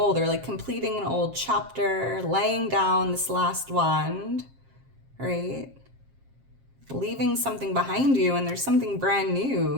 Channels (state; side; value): late; left; 7.5 ms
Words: or like completing an old chapter, laying down this last wand, right? Leaving something behind you, and there's something brand